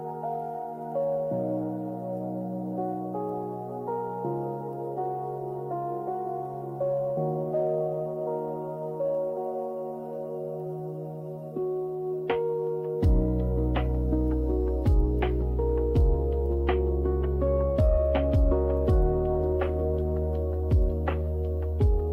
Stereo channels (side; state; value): both; identical; correlation 1.00